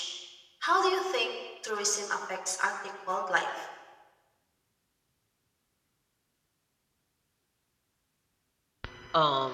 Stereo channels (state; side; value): identical; both; correlation 1.00